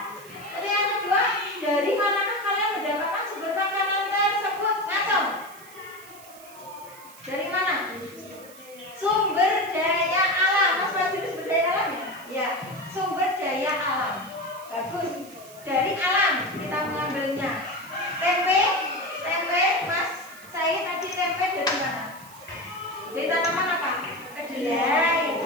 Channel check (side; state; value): right; noise; hiss, 20 dB below the sound